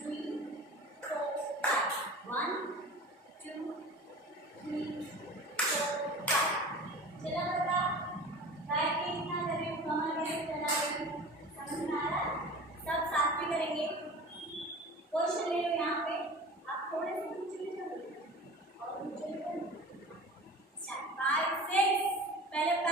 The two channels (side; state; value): both; normal; correlation 0.37